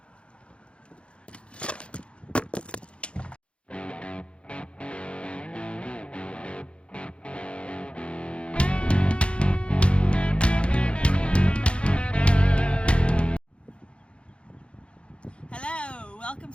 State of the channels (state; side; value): late; right; 0.058 ms